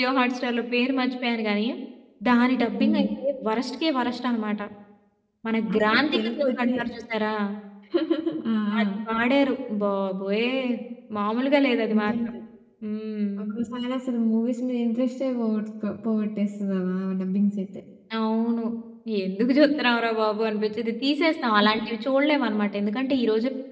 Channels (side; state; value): both; identical; correlation 1.00